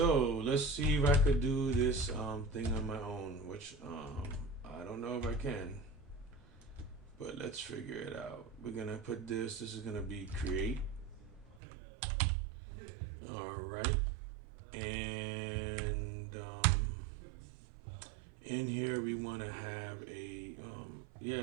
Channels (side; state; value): left; drops out; at 11.6 s